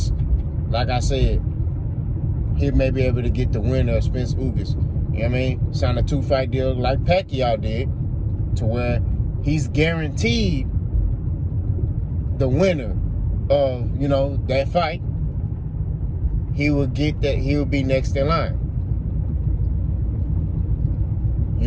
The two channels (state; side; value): identical; both; correlation 1.00